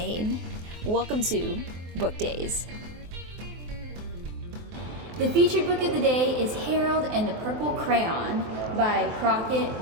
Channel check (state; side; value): late; left; 24 ms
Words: Welcome to Book Days. The featured book of the day is Harold and the Purple Crayon by